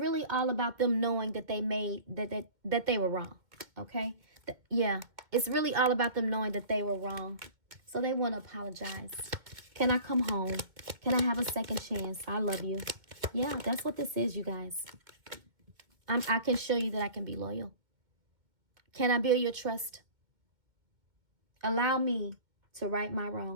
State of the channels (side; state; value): left; late; 2.1 ms